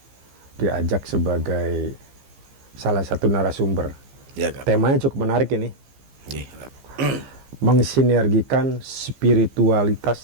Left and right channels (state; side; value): late; left; 15 ms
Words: diajak sebagai salah satu narasumber. Ya, Kap. Temanya cukup menarik ini. Mensinergikan